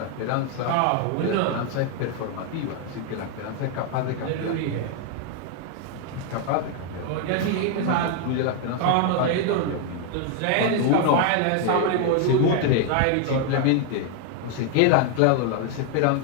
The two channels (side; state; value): both; different; correlation 0.00